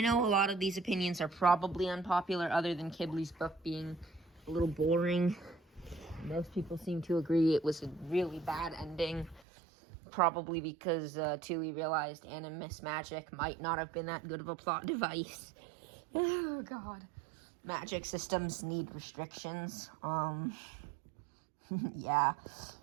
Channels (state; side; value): drops out; left; at 9.4 s